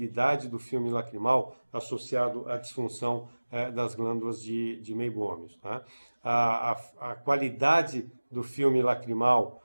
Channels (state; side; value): inverted; both; correlation -1.00